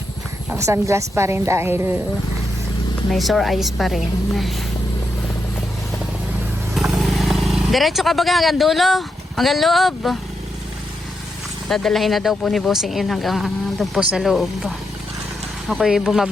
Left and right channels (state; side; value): normal; both; correlation 0.83